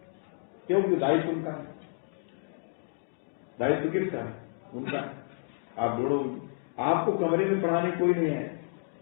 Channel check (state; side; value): silent; right; digital silence